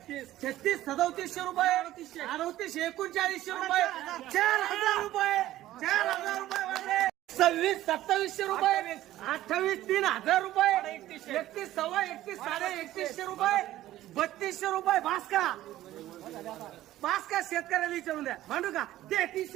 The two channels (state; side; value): quieter; left; 14.5 dB